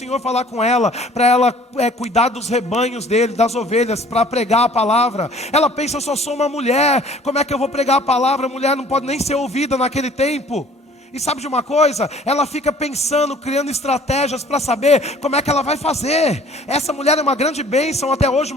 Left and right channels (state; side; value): normal; both; correlation 0.53